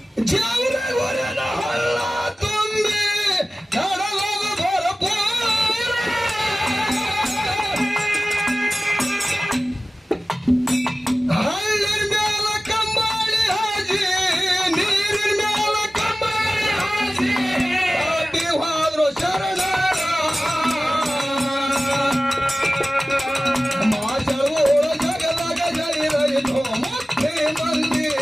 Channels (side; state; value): both; normal; correlation 0.96